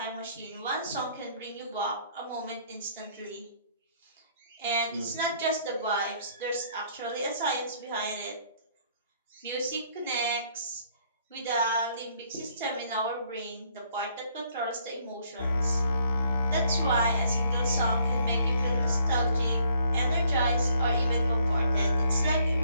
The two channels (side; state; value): both; inverted; correlation -0.65